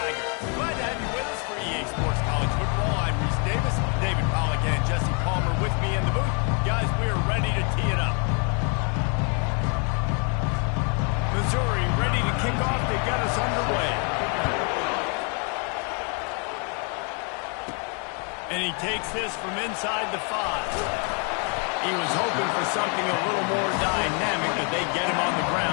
Glad to have you with us for EA Sports College Football. I'm Reese Davis, David Pollock, and Jesse Palmer with me in the booth. Guys, we are ready to tee it up. Missouri ready to kick off to get us underway. And he takes this from inside the 5. He was hoping for something a little more dynamic, but they get him on the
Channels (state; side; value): quieter; right; 37.8 dB